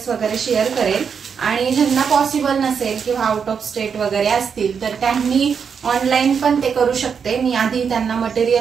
वगैरे शेअर करेल। आणि ज्यांना पॉसिबल नसेल किंवा आउट ऑफ स्टेट वगैरे असतील तर त्यांनी ऑनलाइन पण ते करू शकते। मी आधी त्यांना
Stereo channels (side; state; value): left; quieter; 6.6 dB